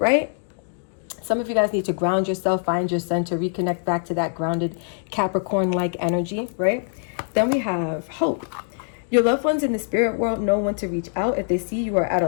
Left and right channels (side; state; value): right; silent; digital silence